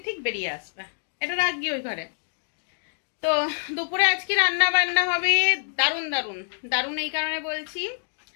ঠিক বেরিয়ে আসবে। এটা রাখবি ওই ঘরে। তো দুপুরে আজকে রান্না বান্না হবে দারুণ দারুণ দারুণ। এই কারণে বলছি,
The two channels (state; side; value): silent; right; digital silence